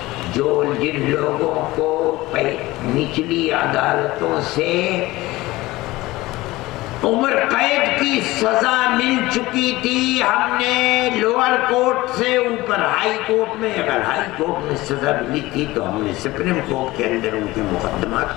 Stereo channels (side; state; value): right; quieter; 19.1 dB